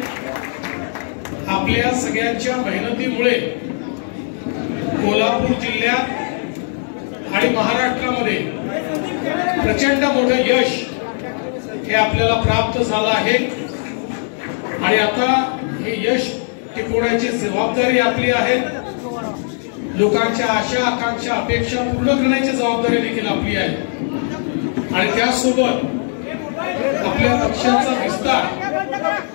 आपल्या सगळ्यांच्या मेहनतीमुळे कोल्हापूर जिल्ह्यात आणि महाराष्ट्रामध्ये प्रचंड मोठं यश हे आपल्याला प्राप्त झालं आहे। आणि आता हे यश टिकवण्याची जबाबदारी आपली आहे। लोकांच्या आशा आकांक्षा अपेक्षा पूर्ण करण्याची जबाबदारी देखील आपली आहे। आणि त्यासोबत आपल्या पक्षाचा विस्तार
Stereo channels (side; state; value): right; silent; 59 dB below the other